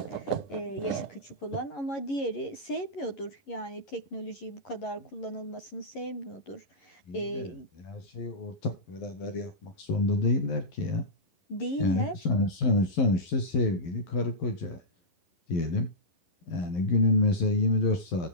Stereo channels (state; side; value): late; right; 11 ms